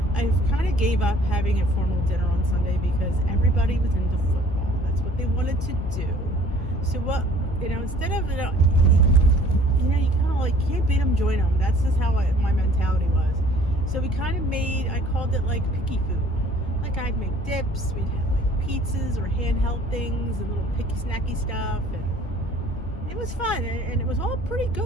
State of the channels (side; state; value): both; normal; correlation 0.54